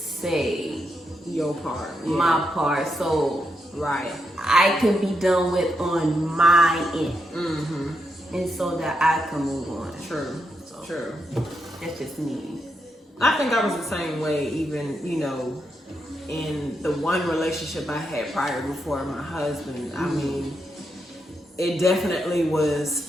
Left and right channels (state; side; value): normal; both; correlation 0.83